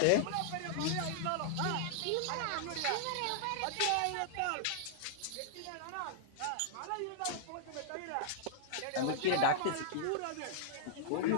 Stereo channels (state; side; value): different; both; correlation -0.01